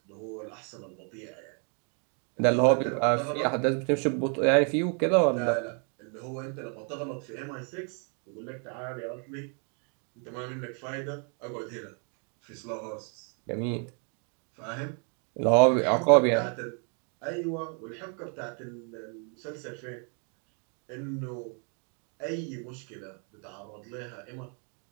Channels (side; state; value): left; quieter; 40.0 dB